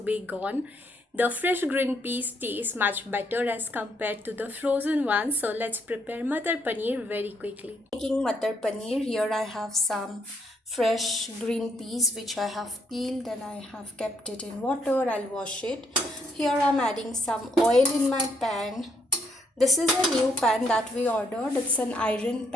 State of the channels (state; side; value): normal; both; correlation 0.73